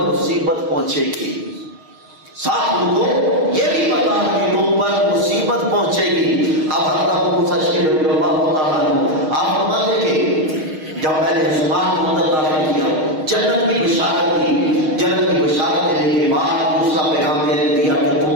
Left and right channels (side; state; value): left; late; 6.4 ms